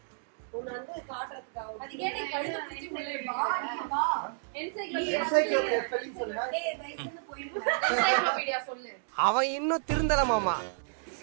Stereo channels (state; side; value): silent; left; digital silence